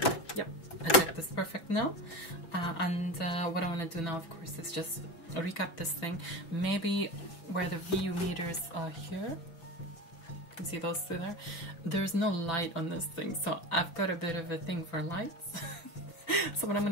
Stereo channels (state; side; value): late; right; 6.0 ms